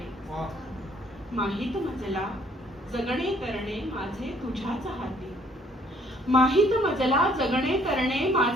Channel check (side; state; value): both; normal; correlation 0.62